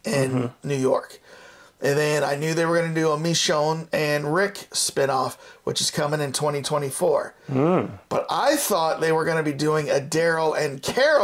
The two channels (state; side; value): identical; both; correlation 1.00